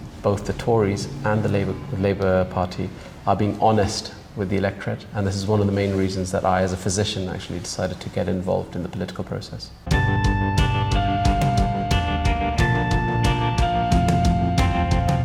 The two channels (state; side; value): identical; both; correlation 1.00